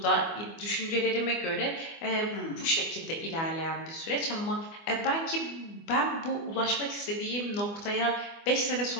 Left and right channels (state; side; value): late; right; 24 ms